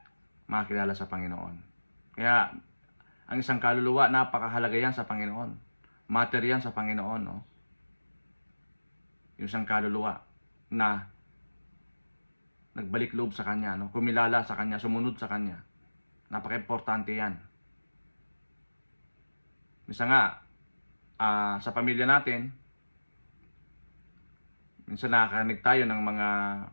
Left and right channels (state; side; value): inverted; both; correlation -1.00